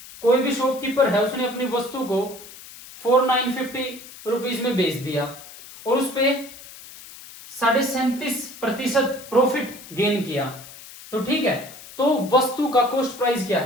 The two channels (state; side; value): noise; left; hiss, 17 dB below the sound